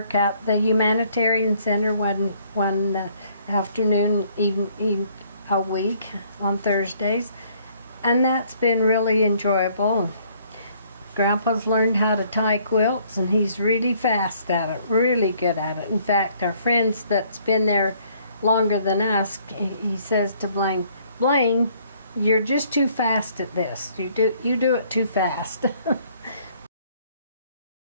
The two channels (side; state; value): both; inverted; correlation -0.63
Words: at the Humanitarian Center one afternoon, even a week on Thursdays, and that's been really enjoyable. Grandpa's learned how to tie quilts, and he's really fast at it, really good at it. In fact, our friends that's been there longer than us, he says to Blaine, Blaine, you're just too fast at this. You do it too fast.